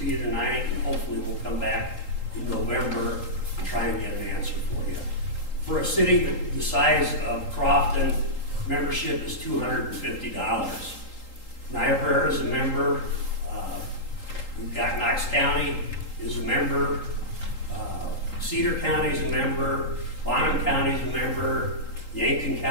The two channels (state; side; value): late; right; 3.8 ms